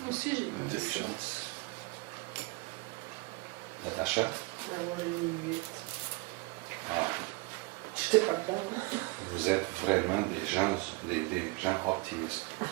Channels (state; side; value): quieter; left; 24.7 dB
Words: Moi aussi, j'ai mis ça. Intelligence. Natacha? Ouais, moi, j'ai mis 8. Ah, J'étais pas dedans. vous êtes vraiment des gens optimistes. Ah,